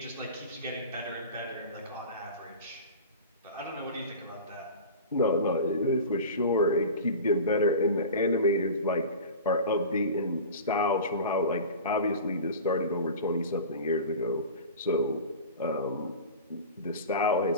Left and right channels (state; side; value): inverted; both; correlation -0.34